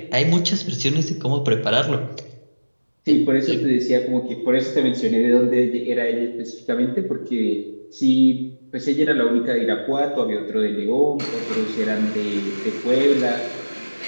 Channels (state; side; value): inverted; both; correlation -1.00